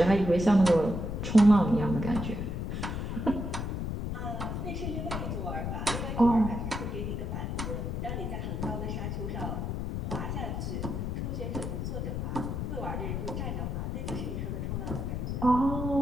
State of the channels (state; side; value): noise; left; rumble, 3 dB below the sound